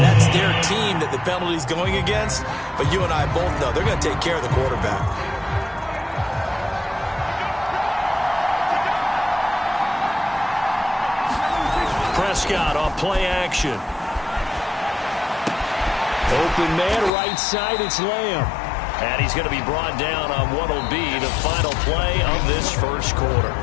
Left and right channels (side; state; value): right; drops out; at 17.1 s